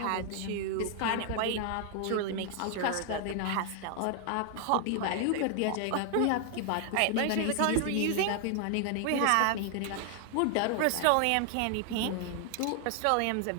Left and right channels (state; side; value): different; both; correlation 0.00